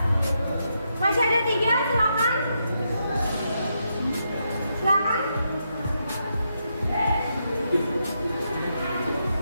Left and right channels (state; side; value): inverted; both; correlation -0.82